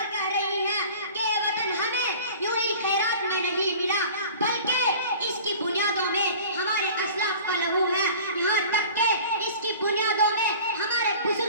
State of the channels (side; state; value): both; inverted; correlation -0.43